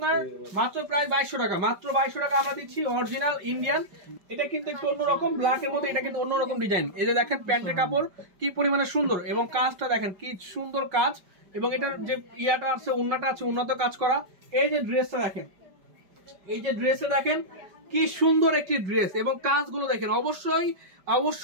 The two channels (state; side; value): late; left; 5.1 ms